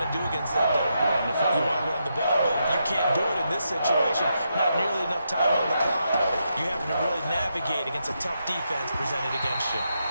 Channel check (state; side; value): inverted; both; correlation -0.83